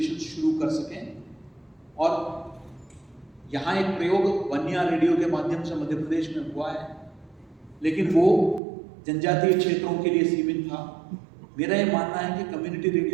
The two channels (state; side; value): drops out; left; at 8.6 s